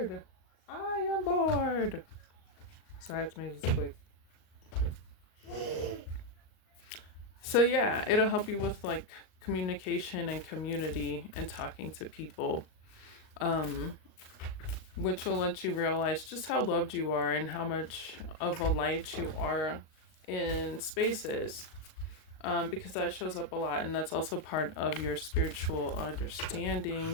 I am bored. So I have to make this quick. So yeah, it'll help you with like communication and community and talking to people, which will let you realize just how loved you are and how much of a light you are in spaces, because that shows up a lot, and that's also part of your spiritual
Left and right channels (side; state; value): right; late; 38 ms